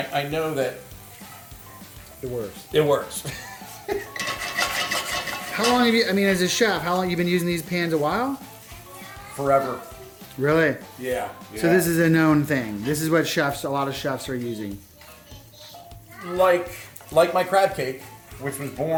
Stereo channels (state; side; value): identical; both; correlation 1.00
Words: know that it works. It works. How long have you? I mean, as a chef, how long have you been using these pans? A while. Forever. Really? Yeah. So this is a known thing. This is what a lot of chefs are using. Like my crab cake, which was